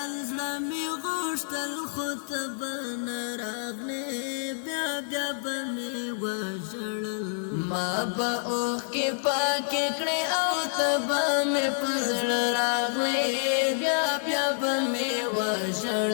زمي غوښتل خو تبا راغلی بیا بیا به می وژړل ما به اوخ کې پاکې کړې او تبا می پزړ راغلی بیا بیا به می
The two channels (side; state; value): right; silent; 59 dB below the other